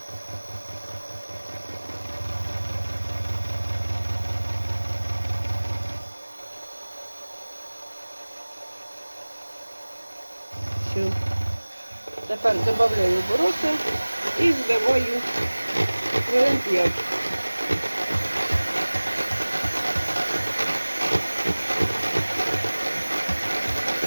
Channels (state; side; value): inverted; both; correlation -1.00